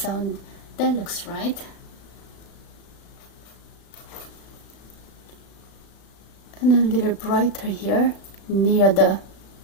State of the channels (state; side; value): late; right; 36 ms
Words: looks right. And a little brighter here near the